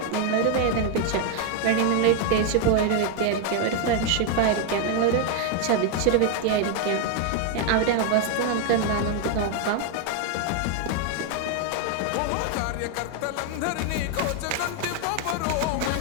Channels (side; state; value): both; different; correlation 0.01